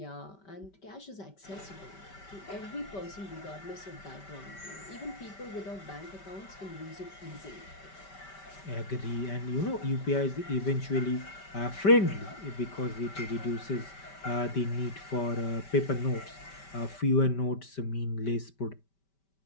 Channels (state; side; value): late; right; 5.1 ms